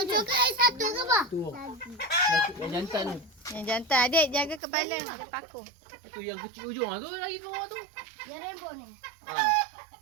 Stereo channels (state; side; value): drops out; left; at 4.6 s